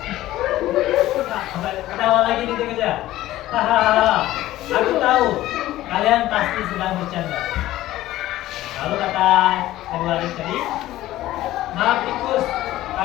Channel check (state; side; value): quieter; right; 15.2 dB